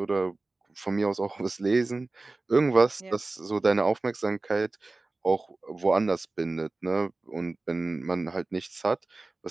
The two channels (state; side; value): quieter; left; 3.3 dB